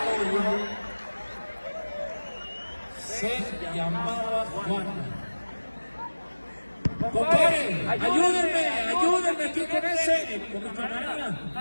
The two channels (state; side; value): inverted; both; correlation -1.00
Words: Se llamaba Juan. Compadre, ayúdenme aquí con ese. Con mi camarada.